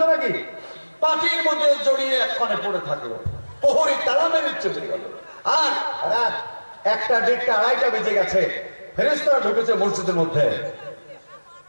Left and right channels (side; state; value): both; inverted; correlation -1.00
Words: নাকি? পাটির মধ্যে জড়িয়ে একখানে পড়ে থাকলো। প্রহরী তালা মেরে চলে গেল। আর রাত 1টা 1:30 2:30 বেজে গেছে। ফেরেশতারা ঢুকেছে মসজিদের মধ্যে।